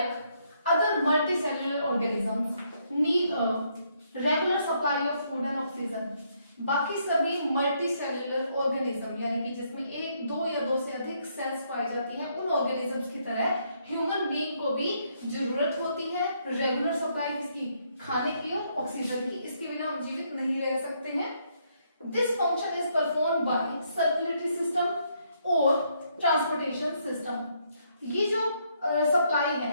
other multicellular organisms need a regular supply of food and oxygen. बाकी सभी मल्टीसेलुलर ऑर्गेनिज्म यानी कि जिसमें एक, दो या दो से अधिक सेल्स पाई जाती हैं, उन ऑर्गेनिजम्स की तरह ह्यूमन बीइंग को भी जरूरत होती है रेगुलर सप्लाई किसकी, खाने की और ऑक्सीजन की। इसके बिना हम जीवित नहीं रह सकते हैं। This function is performed by circulatory system और ट्रांसपोर्टेशन सिस्टम। ये जो सप्लाई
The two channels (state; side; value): inverted; both; correlation -0.73